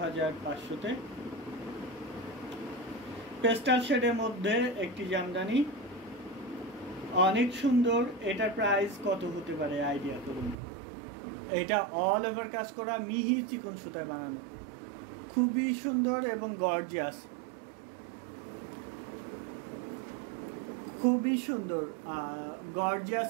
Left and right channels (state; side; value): drops out; left; at 10.6 s